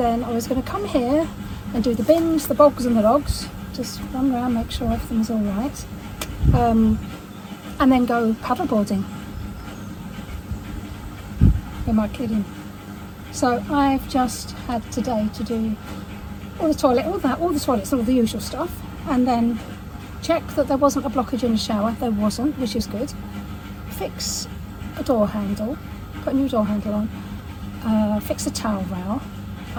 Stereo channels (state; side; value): identical; both; correlation 1.00